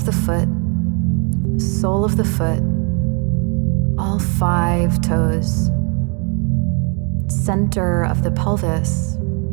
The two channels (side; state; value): left; quieter; 35.2 dB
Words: the foot, sole of the foot, all 5 toes. Center of the pelvis.